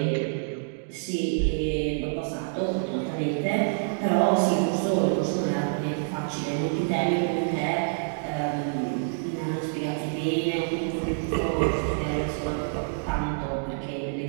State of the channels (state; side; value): silent; left; digital silence